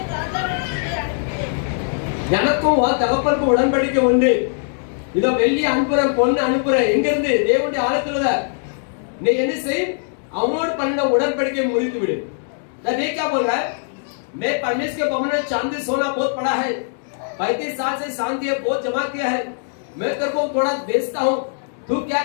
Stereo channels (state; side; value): silent; right; digital silence